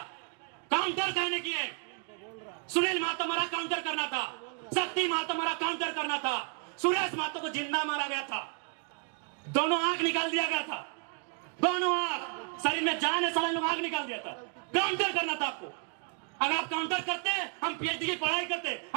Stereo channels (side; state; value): left; quieter; 39.9 dB